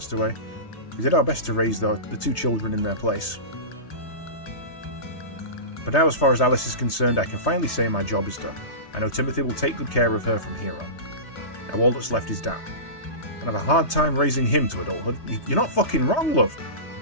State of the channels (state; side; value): late; right; 3.2 ms